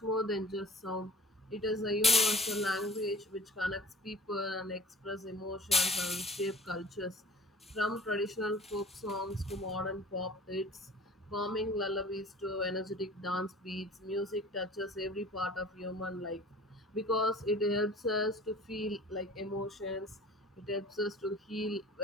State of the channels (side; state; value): both; normal; correlation 0.45